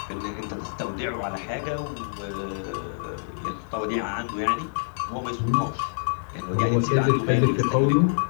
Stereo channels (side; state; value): right; silent; digital silence